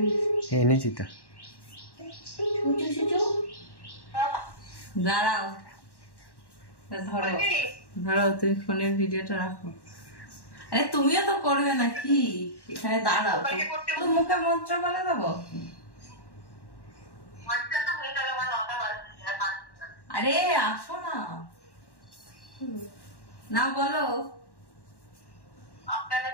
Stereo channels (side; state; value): right; late; 1.1 ms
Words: এনেছি তো দাঁড়াও ধরো তুমি ফোনের ভিডিওটা রাখো আরে তুমিও তো করবে নাকি এখানে দাঁড়াও তো মুখে মন্ত্র বলে দেবো আরে আসো না না বলো আপনারা